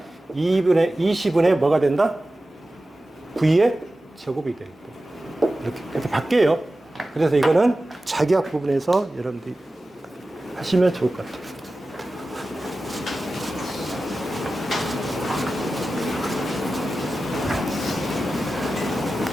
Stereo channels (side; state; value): both; normal; correlation 0.94